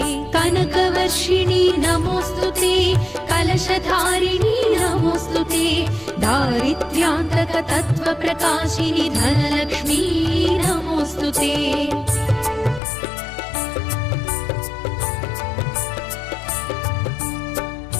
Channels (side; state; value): right; drops out; at 12.8 s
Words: कनकवर्षिणि नमोऽस्तुते, कलशधारिणि नमोऽस्तुते, दारिद्र्यान्तकतत्त्वप्रकाशिनि धनलक्ष्मी नमोऽस्तुते।